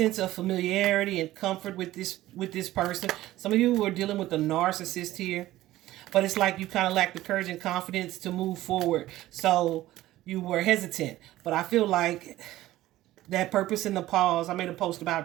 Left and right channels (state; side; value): quieter; left; 15.6 dB